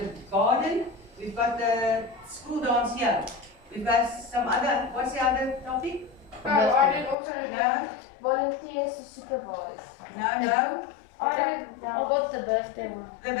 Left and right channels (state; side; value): drops out; right; at 7.2 s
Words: garden. We've got the school dance here. We've got some other, what's the other topic? I did also No, Volunteers to supervise. no. I got the birthday one. The